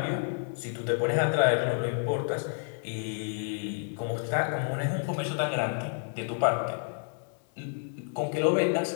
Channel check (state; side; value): silent; right; 58 dB below the other